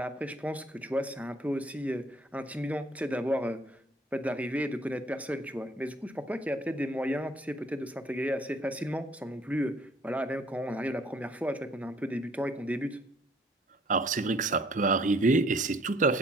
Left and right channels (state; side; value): normal; both; correlation 0.59